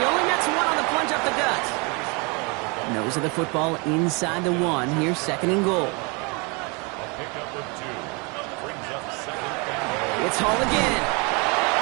only nets one on the plunge up the gut. Nose of the football inside the 1. Here's 2nd and goal. It's Hall again.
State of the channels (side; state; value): left; quieter; 30.3 dB